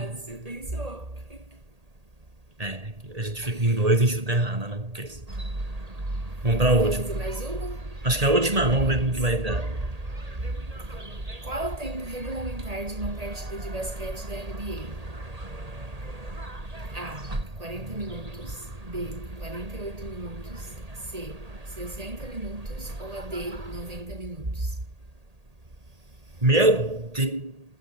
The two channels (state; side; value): late; left; 1.8 ms